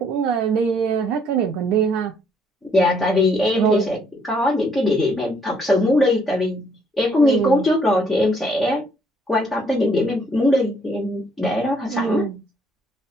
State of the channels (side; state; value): both; normal; correlation 0.67